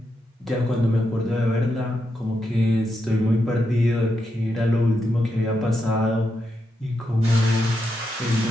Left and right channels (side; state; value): both; normal; correlation 0.84